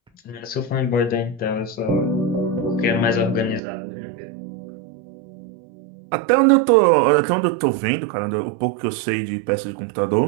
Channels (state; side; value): drops out; left; at 3.6 s